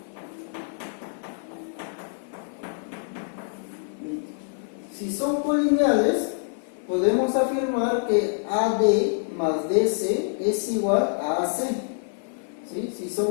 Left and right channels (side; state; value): right; silent; 55 dB below the other